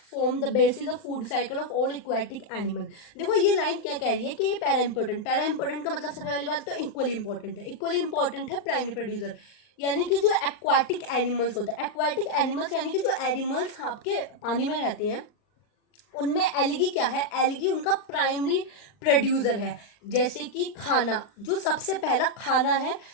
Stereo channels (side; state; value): right; late; 39 ms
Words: form the basis of food cycle of all aquatic animal। देखो ये लाइन क्या कह रही है कि ये पैरा इंपॉर्टेंट का मतलब सबसे पहली बात तो इक्वली इंपॉर्टेंट है। इक्वली इंपॉर्टेंट है प्राइमरी प्रोड्यूसर, यानी कि जो एक्वाटिक एनिमल्स होते हैं, एक्वाटिक एनिमल्स यानी कि जो एनिमल्स आपके पानी में रहते हैं उनमें एलगी क्या है, एलगी उनका प्राइमरी प्रोड्यूसर है। जैसे कि खाना, जो सबसे पहला खाना है